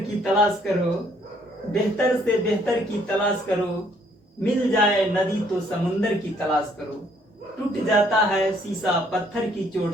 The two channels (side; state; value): both; normal; correlation 0.65